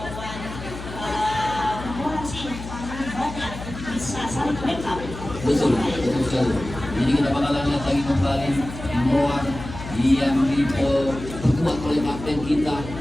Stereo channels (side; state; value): left; noise; hum, 11 dB below the sound